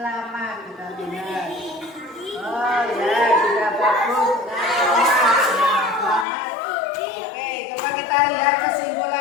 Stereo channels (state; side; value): drops out; right; at 6.2 s